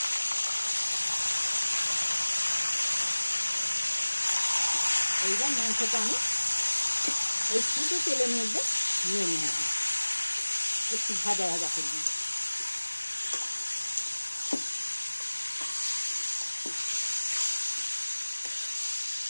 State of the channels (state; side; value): inverted; both; correlation -1.00